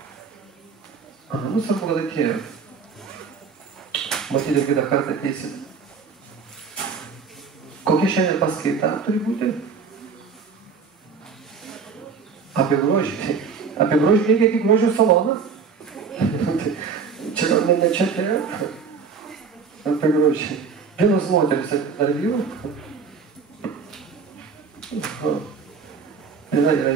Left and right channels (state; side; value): quieter; left; 5.6 dB